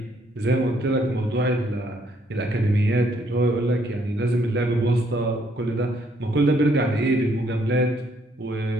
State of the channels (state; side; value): normal; both; correlation 0.69